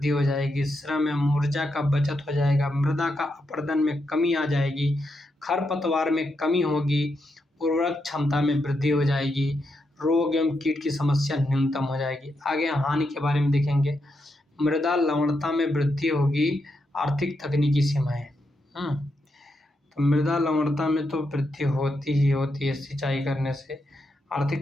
हो जाएगी, श्रम एवं ऊर्जा का बचत हो जाएगा, मृदा का अपरदन में कमी आ जाएगी, खरपतवार में कमी होगी, उर्वरक क्षमता में वृद्धि हो जाएगी, रोग एवं कीट की समस्या न्यूनतम हो जाएगी। आगे हानि के बारे में देखेंगे। मृदा लवणता में वृद्धि होगी, आर्थिक तकनीकी सीमाएं। तो मृदा लवणता में तो वृद्धि होती ही होती है सिंचाई करने से।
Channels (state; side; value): normal; both; correlation 0.83